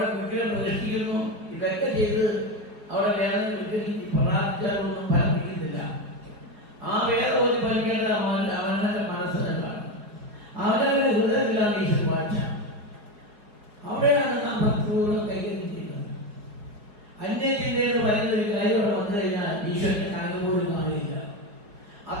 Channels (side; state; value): left; late; 5.0 ms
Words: വിഗ്രഹം പ്രതിഷ്ഠിക്കുന്നു. ഇതൊക്കെ ചെയ്ത് അവിടെ വേദന വിഗ്രഹിച്ച് പ്രാർത്ഥിച്ചാലൊന്നും ഫലമിക്കുന്നില്ല. ആ വേദ ഒരു ഫലിക്കേണ്ടത് അവനവന്റെ മനസ്സ് തന്നെയാണ്. അവനവന്റെ ഹൃദയത്തിലാണ് ഈശ്വര വാഴ്ച. അവിടെയാണ് നാം ഭക്തിപൂർവ്വം കൈകാര്യം ചെയ്യുന്നത്. അന്യചിന്തയിൽ പറയുന്നൊരു കാര്യം വന്നു കഴിഞ്ഞാൽ ഈശ്വരന്റെ കണക്ക് പോലും കാണില്ല.